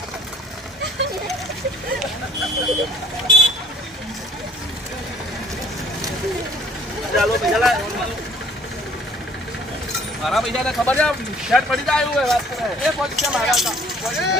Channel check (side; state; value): both; normal; correlation 0.56